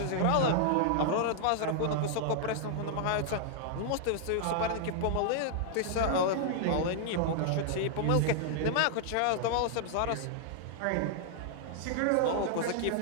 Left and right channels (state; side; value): different; both; correlation -0.01